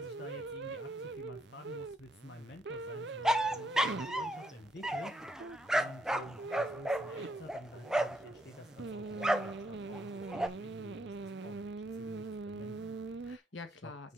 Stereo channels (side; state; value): both; normal; correlation 0.75